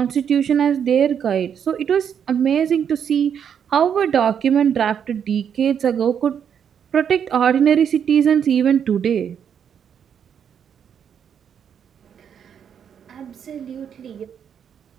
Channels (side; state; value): left; quieter; 8.1 dB